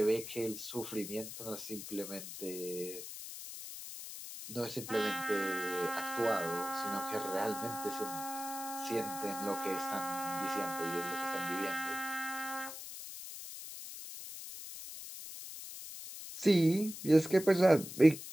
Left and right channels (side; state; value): left; noise; hiss, 10 dB below the sound